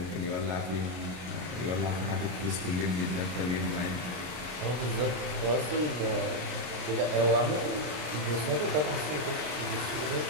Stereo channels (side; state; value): left; late; 33 ms